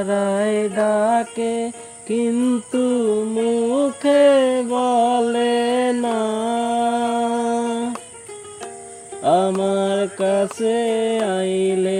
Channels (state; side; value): identical; both; correlation 1.00